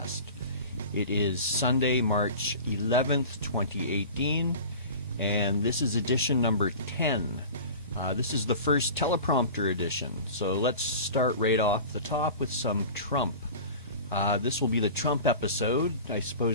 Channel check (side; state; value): both; inverted; correlation -0.37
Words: It is Sunday, March 11th, 2018, and this is edition number 10. This is the first teleprompter edition, so let's start right off the top with some Trump. This will be the Trump episode. I